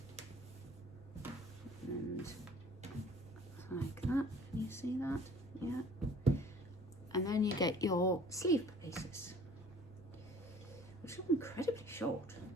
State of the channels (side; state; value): both; normal; correlation 0.51